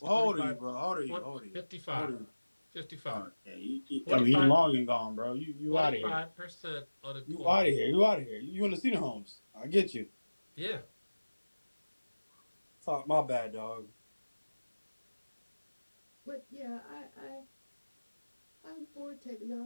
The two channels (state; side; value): inverted; both; correlation -1.00